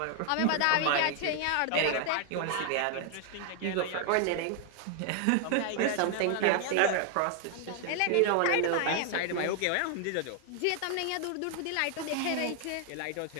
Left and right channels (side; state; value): both; different; correlation 0.00